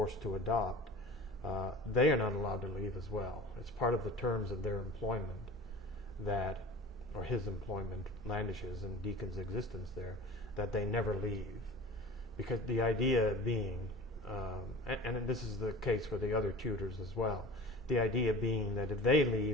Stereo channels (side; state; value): both; normal; correlation 0.39